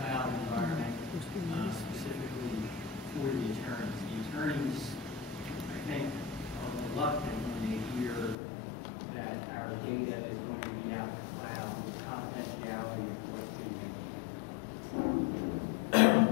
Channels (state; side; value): drops out; right; at 8.3 s